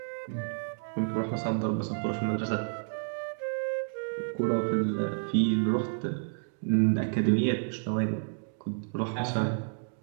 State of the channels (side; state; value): left; silent; digital silence